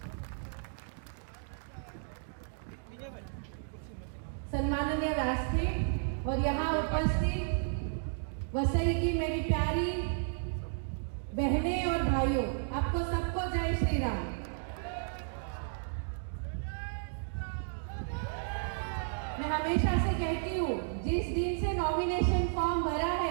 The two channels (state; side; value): silent; left; digital silence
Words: सम्माननीय राष्ट्रीय और यहाँ उपस्थित वसई की मेरी प्यारी बहनें और भाइयों, आपको सबको जय श्री राम। मैं हमेशा से कहती हूँ, जिस दिन से नॉमिनेशन फॉर्म भरा